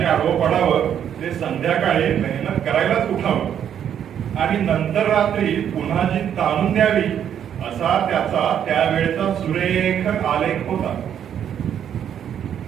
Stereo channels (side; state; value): left; quieter; 9.2 dB